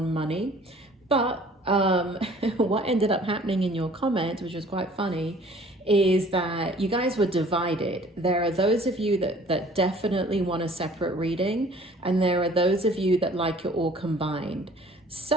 money, but what ended up happening in your comment, which was quite funny, is that you guys were divided. There are those of you that definitely want a separate reading, and there are those of you that like it all combined.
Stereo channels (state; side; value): normal; both; correlation 0.52